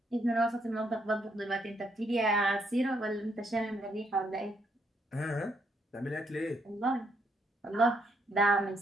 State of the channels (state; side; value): normal; both; correlation 0.74